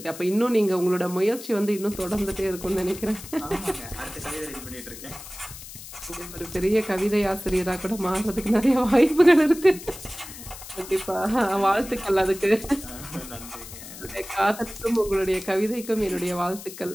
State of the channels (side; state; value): left; noise; hiss, 14 dB below the sound